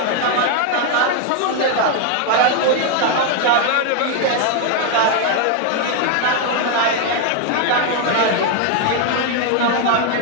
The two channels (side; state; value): both; different; correlation 0.01